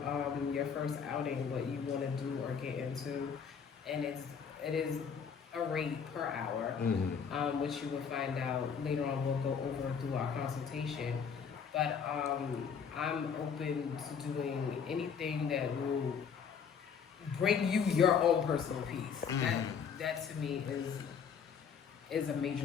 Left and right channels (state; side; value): quieter; right; 6.7 dB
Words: your first outing, what you want to do or get into, and it is a rate per hour, which you will find out later on. We'll go over through our consultation, but I'm open to doing anything that will bring you your own personal peace. That to me is a